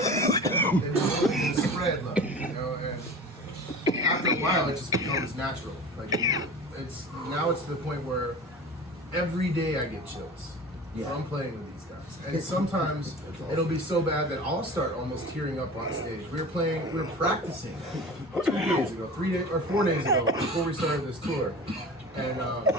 And to spread love, you know? And after a while, it just becomes natural. Like, it's to the point where every day I get chills from playing with these guys. And sometimes it'll be so bad that I'll start almost tearing up on stage. We were practicing 4 days ago before we started this tour. And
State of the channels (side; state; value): both; normal; correlation 0.36